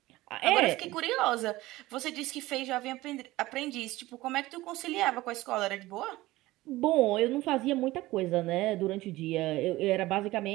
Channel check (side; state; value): left; quieter; 18.1 dB